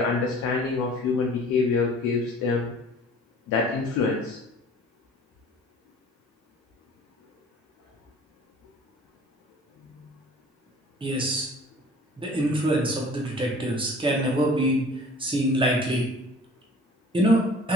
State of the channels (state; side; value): normal; both; correlation 0.48